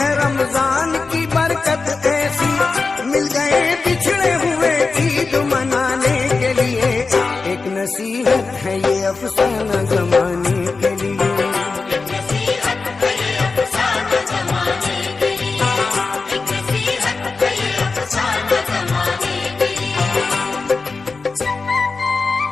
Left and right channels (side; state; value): right; quieter; 4.2 dB